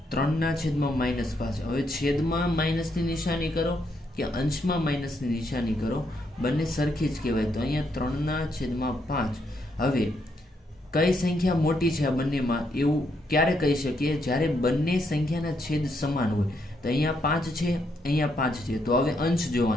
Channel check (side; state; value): both; normal; correlation 0.76